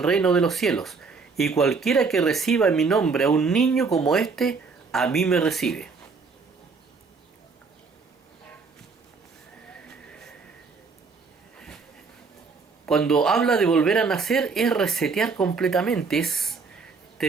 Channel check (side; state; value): left; quieter; 4.7 dB